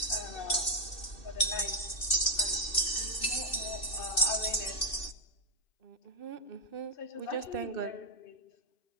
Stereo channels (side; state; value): right; late; 2.6 ms